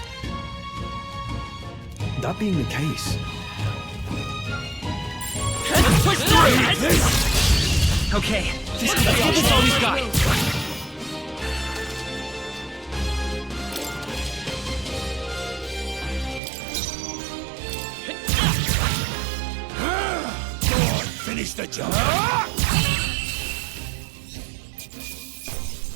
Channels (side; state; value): left; drops out; at 16.4 s